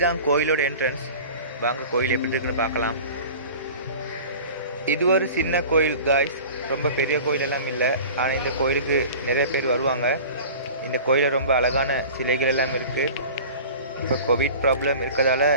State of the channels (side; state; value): both; inverted; correlation -0.40